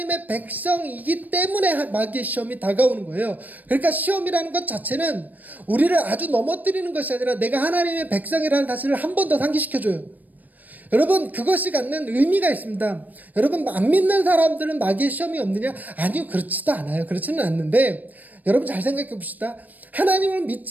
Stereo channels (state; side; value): late; left; 0.082 ms